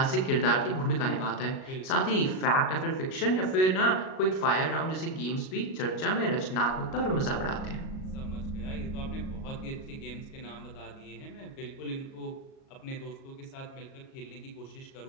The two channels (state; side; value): late; right; 37 ms